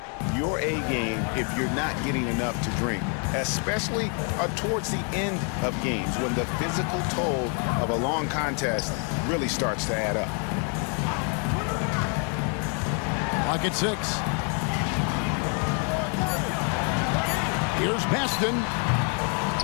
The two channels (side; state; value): right; quieter; 40.0 dB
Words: your A game if you're not getting enough to drink, especially towards the end of games when the physical toll of a long contest really starts to add up. Clock at 6. Here's Baston.